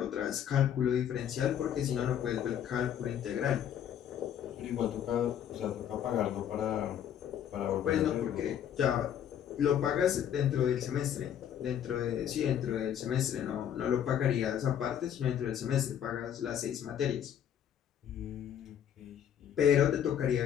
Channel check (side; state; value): right; quieter; 9.5 dB